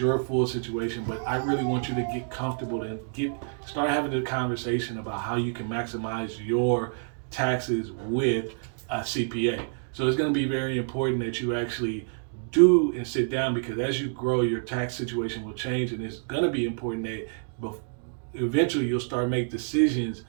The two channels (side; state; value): left; silent; digital silence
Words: full situation, but I really want you to get comfortable and start having a conversation about how you can maximize your taxes with a CPA. So it's going to be very important that you actually do and sit down, because as you grow, your tax situation will change, and it's going to be important that eventually you'll start make decisions